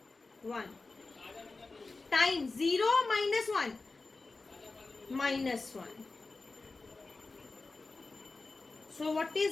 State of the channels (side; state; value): right; quieter; 3.7 dB